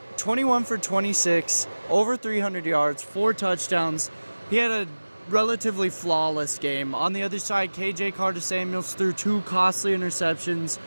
for 26, over 300 yards, 4 touchdowns. He had a relatively flawless game. On the other side, KJ Carter-Samuels threw 2 costly interceptions.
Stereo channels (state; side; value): inverted; both; correlation -1.00